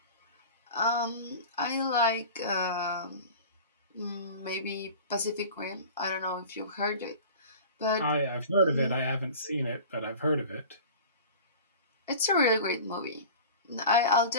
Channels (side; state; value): both; inverted; correlation -0.38